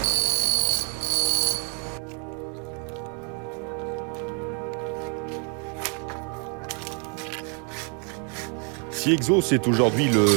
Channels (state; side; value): quieter; left; 38.3 dB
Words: Si Exos est aujourd'hui